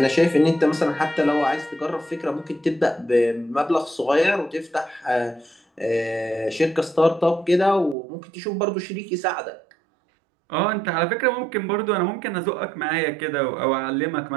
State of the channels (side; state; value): left; drops out; at 8.0 s